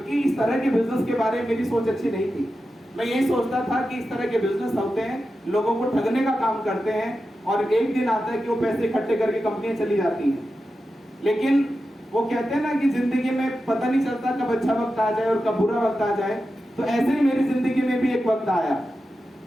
इस तरह के बिजनेस के बारे में मेरी सोच अच्छी नहीं थी। मैं यही सोचता था कि इस तरह के बिजनेस होते हैं, लोगों को ठगने का काम करते हैं और एक दिन आता है कि वो पैसे इकट्ठे करके कंपनियां चली जाती हैं। लेकिन वो कहते हैं ना कि जिंदगी में पता नहीं चलता कब अच्छा वक्त आ जाए और कब बुरा वक्त आ जाए। तो ऐसे ही मेरी जिंदगी में भी एक वक्त आया।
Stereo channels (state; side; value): normal; both; correlation 0.91